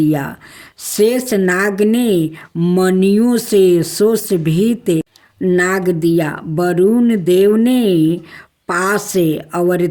शेष नाग ने मणियों से सुशोभित नाग दिया, वरुण देव ने पाश और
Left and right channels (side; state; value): both; identical; correlation 1.00